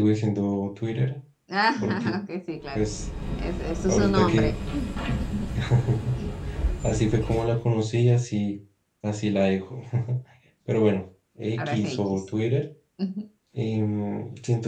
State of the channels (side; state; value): both; identical; correlation 1.00